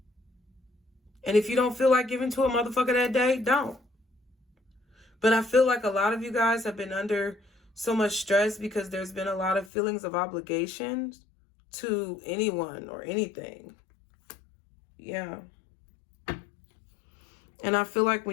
And if you don't feel like giving to a motherfucker that day, don't. But I feel like a lot of you guys have been under so much stress because there's been a lot of feelings of obligation to anyone or anything. Yeah. And I feel like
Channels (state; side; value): drops out; right; at 9.7 s